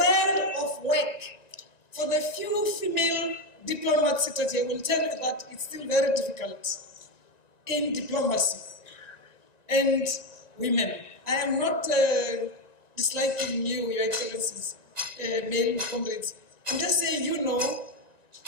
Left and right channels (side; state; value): right; late; 1.9 ms